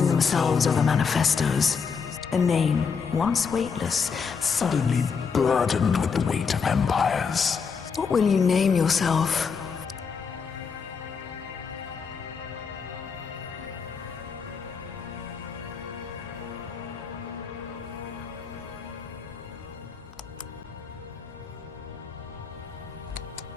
themselves over manifestos. A name, once weightless, Suddenly burdened with the weight of empires. What will you name yourself?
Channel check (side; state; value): right; quieter; 5.8 dB